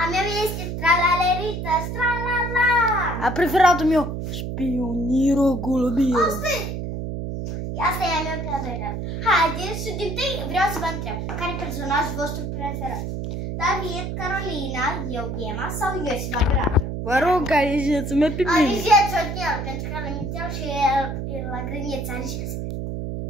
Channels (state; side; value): noise; right; hum, 4 dB below the sound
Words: A meu este Tralalerită, Stralala. A preferatul meu, Spioniro Golubiro. Asta e a meu preferat. Haideți și din tâi vreau să vă întreb. Care e personajul vostru preferat? David, Carolina, eu, Ghema sau Iosif, operator? Vă rog, alegeți-mă pe mine. Alegeți-o din el, pentru că l-am inițial și el la grăniță, alegeți.